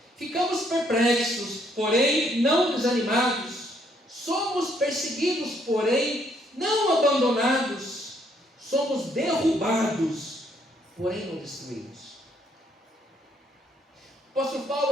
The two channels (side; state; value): both; normal; correlation 0.69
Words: Ficamos perplexos, porém não desanimados. Somos perseguidos, porém não abandonados. Somos derrubados, porém não destruídos. O apóstolo